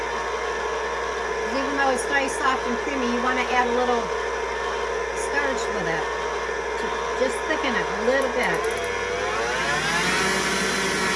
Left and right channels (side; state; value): both; identical; correlation 1.00